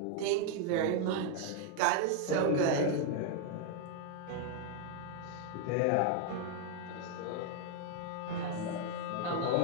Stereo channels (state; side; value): different; both; correlation 0.00